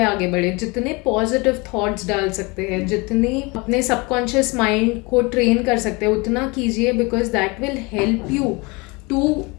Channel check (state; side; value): quieter; right; 26.8 dB